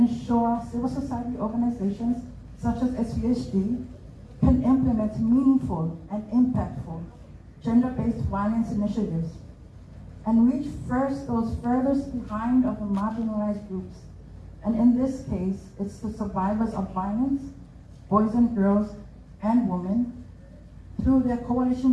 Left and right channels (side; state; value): both; identical; correlation 1.00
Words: civil society organizations such as SVSG can implement meaningful and impactful gender-based violence initiatives and reach first those furthest behind of the marginalized groups. And in this case, it's the survivors of violence, boys and girls and women, through their